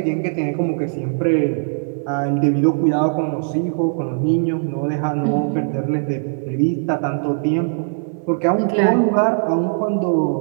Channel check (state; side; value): silent; left; digital silence